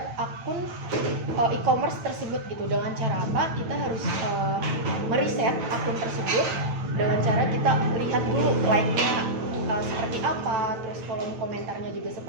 akun e-commerce tersebut gitu. Dengan cara apa? Kita harus meriset akun tersebut dengan cara kita lihat dulu like-nya seperti apa, terus kolom komentarnya juga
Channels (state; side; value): late; left; 9.1 ms